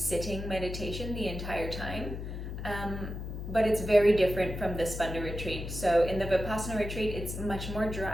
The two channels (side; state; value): left; noise; hum, 7 dB below the sound